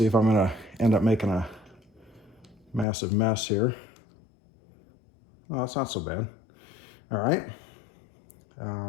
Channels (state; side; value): drops out; right; at 2.9 s